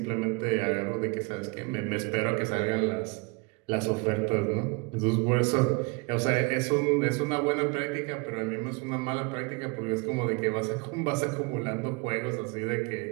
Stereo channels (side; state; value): left; quieter; 29.5 dB